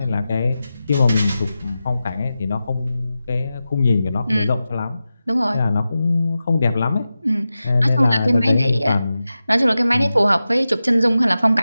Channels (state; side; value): inverted; both; correlation -0.93